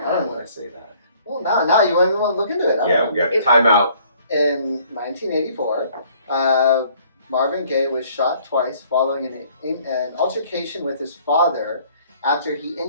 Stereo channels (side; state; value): both; inverted; correlation -0.59